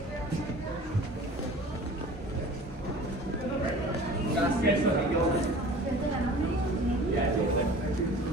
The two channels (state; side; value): normal; both; correlation 0.43